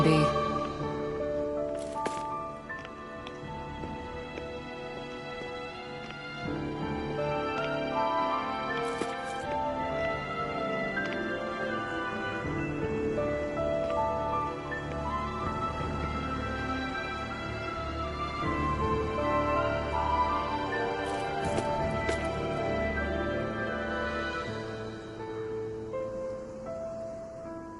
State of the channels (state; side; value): identical; both; correlation 1.00